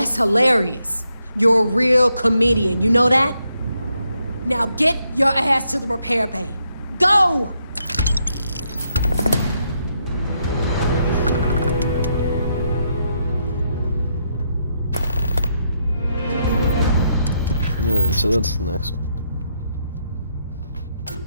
hilarious. You're a real comedian, you know that? Now get your ass to the repair bay. Go! Yeah, so that's the next one.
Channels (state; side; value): inverted; both; correlation -0.78